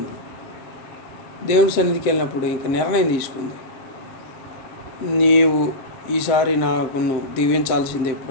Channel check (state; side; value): late; right; 7.6 ms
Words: దేవుని సన్నిధికి వెళ్ళినప్పుడు ఇంక నిర్ణయం తీసుకుంది, నీవు ఈసారి నాకు దీవించాల్సిందే